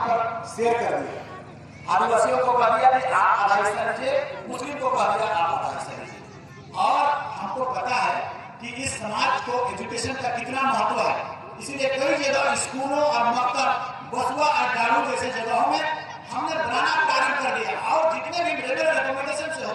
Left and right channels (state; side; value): identical; both; correlation 1.00